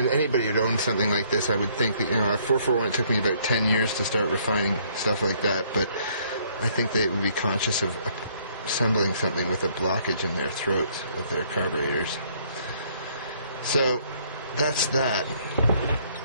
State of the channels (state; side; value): inverted; both; correlation -0.64